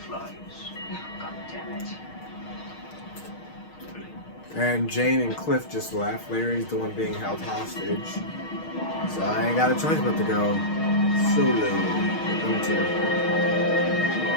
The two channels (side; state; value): right; late; 6.4 ms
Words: Oh, God damn it. And Jane and Cliff just left. Larry's the one being held hostage. So I ain't got a choice but to go solo with them two.